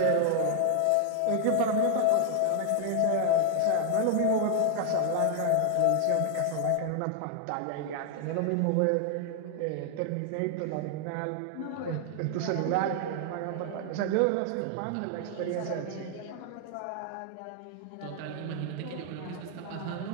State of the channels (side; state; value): both; different; correlation 0.00